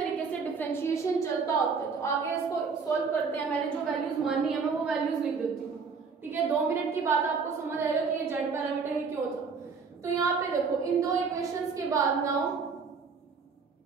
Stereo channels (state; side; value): quieter; left; 5.2 dB